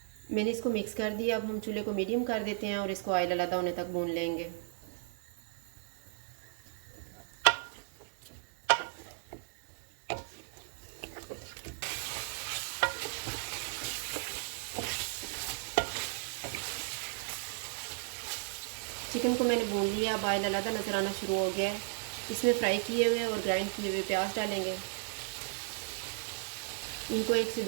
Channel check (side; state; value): left; silent; 54 dB below the other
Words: मैंने इसको मिक्स कर दिया। अब हम चूल्हे को मीडियम कर देते हैं और इसको ऑयल अलग होने तक भून लेंगे। चिकन को मैंने भून लिया। अब ऑयल अलग नज़र आना शुरू हो गया है। इसमें फ्राई किए हुए और ग्राइंड किए हुए प्याज डालेंगे। इनको 1 से